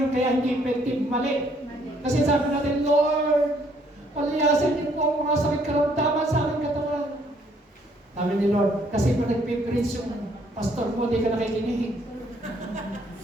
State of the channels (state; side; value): normal; both; correlation 0.66